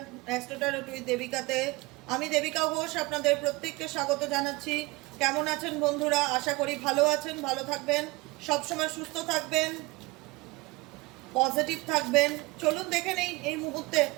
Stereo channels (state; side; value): quieter; left; 23.7 dB